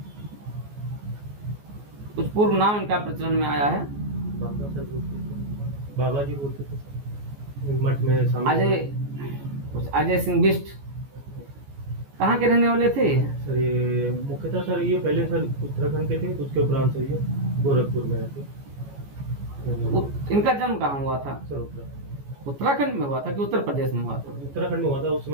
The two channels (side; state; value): left; late; 14 ms